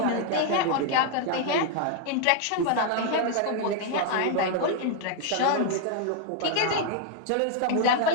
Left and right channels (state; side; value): different; both; correlation 0.00